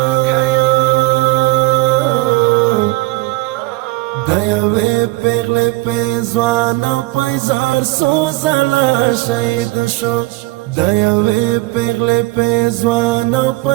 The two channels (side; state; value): left; quieter; 21.8 dB